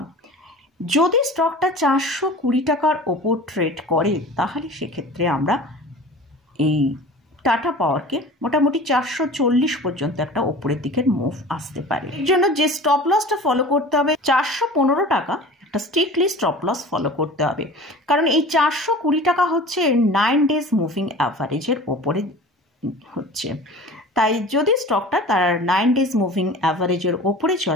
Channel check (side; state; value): both; normal; correlation 0.40